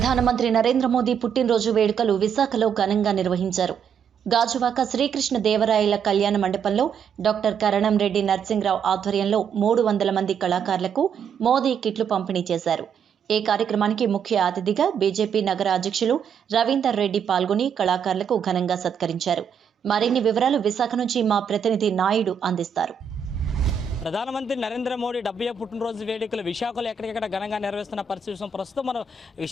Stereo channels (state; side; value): quieter; left; 7.0 dB